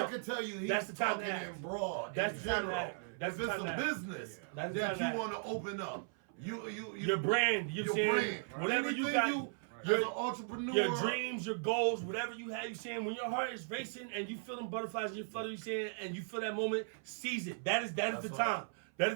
I can tell you, that's the time talking to act. In broad. That's in the time general. to act. That's if the it's time a to act. business That's the that time you to want to open up, your brand. You saying whatever you got. As an entrepreneur, your dreams, your goals, whatever you have, you saying when your heart is racing and you feeling butterflies and you flutter, you saying and you feel that moment, seize it. That is the time. That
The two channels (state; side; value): silent; left; 53 dB below the other